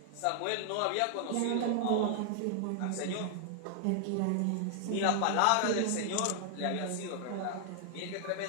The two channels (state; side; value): different; both; correlation 0.00